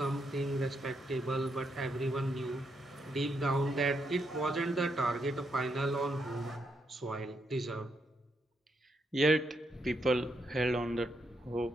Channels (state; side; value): normal; both; correlation 0.79